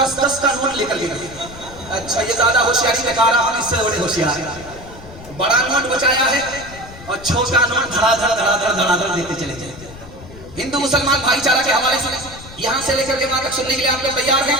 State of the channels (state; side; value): noise; left; rumble, 17 dB below the sound